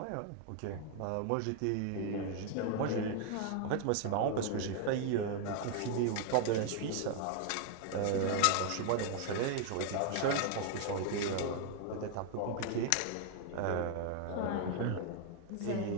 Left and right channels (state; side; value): different; both; correlation 0.00